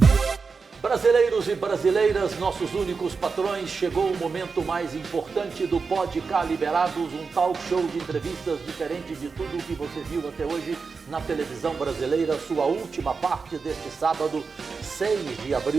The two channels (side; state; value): left; quieter; 4.9 dB